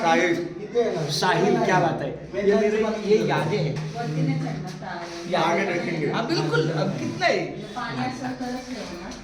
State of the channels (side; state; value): both; identical; correlation 1.00